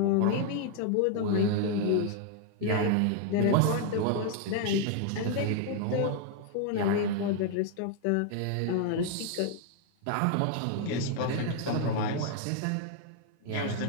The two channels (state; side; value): different; both; correlation 0.00